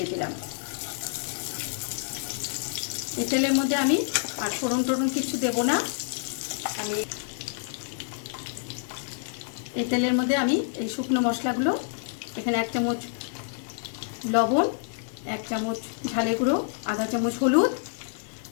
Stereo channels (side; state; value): right; silent; digital silence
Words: দিলাম। এই তেলের মধ্যে আমি আর ফোড়ন টোড়ন কিছু দেবো না। আমি এই তেলের মধ্যে আমি এই শুকনো মশলাগুলো, এখানে 1 চামচ লবণ, 1 চামচ ঝালে গুঁড়ো, আধা চামচ হলুদ,